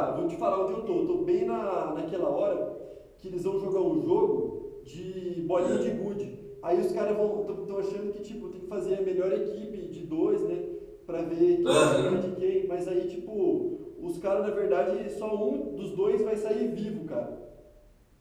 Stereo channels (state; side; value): identical; both; correlation 1.00